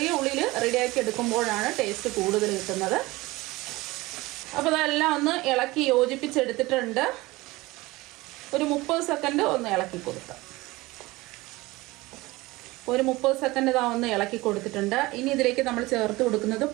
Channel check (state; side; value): quieter; left; 20.6 dB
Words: ഉള്ളിയിൽ റെഡിയാക്കി എടുക്കുമ്പോഴാണ് ടേസ്റ്റ് കൂടുതൽ കിട്ടുന്നത്. അപ്പോൾ ഇതെല്ലാം ഒന്ന് ഇളക്കി യോജിപ്പിച്ചെടുത്തിട്ടുണ്ട്. ഒരു 30 സെക്കൻഡ് ഒന്ന് ഇളക്കി കൊടുക്കാം. ഒരു 30 സെക്കൻഡ് ഇതാ ഒന്ന് ഇളക്കി കൊടുത്തിട്ടുണ്ട്. ഇനി ഇതിലേക്ക് നമ്മൾ ചേർത്ത് കൊടുക്കുന്നത്